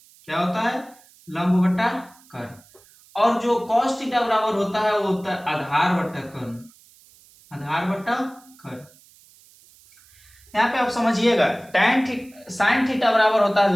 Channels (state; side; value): noise; right; hiss, 27 dB below the sound